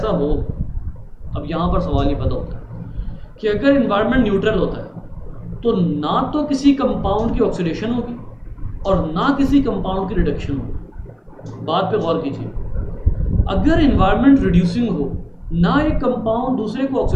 हो, अब यहाँ पर सवाल ये पैदा होता है कि अगर एनवायरनमेंट न्यूट्रल होता है तो ना तो किसी कंपाउंड की ऑक्सीडेशन होगी और ना किसी कंपाउंड की रिडक्शन हो। बात पे गौर कीजिए, अगर इन्वायरमेंट रिड्यूसिंग हो, ना एक कंपाउंड दूसरे को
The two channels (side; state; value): both; identical; correlation 1.00